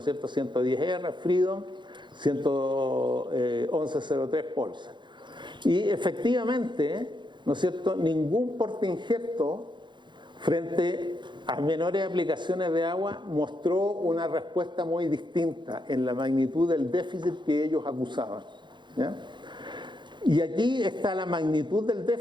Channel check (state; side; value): late; left; 0.23 ms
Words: cierto? 110R, Freedom, 1103 Pulsar. Y efectivamente, ¿no es cierto?, ningún portainjerto frente a menores aplicaciones de agua mostró una respuesta muy distinta en la magnitud del déficit que ellos acusaban, ¿ya? Y aquí está la magnitud del